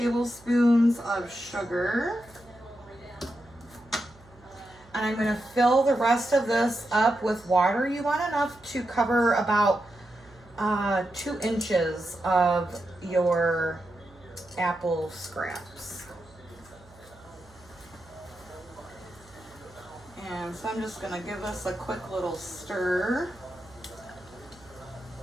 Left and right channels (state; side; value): noise; right; hum, 26 dB below the sound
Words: of sugar. And I'm gonna fill the rest of this up with water. You want enough to cover about 2 inches of your apple scraps. And so I'm just gonna give this a quick little stir.